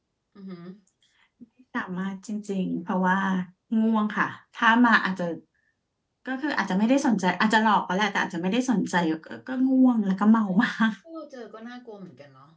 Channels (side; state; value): both; identical; correlation 1.00